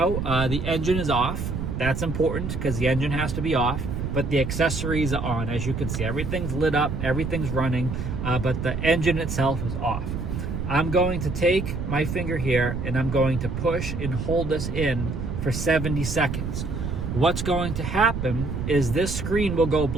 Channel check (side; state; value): right; noise; rumble, 4 dB below the sound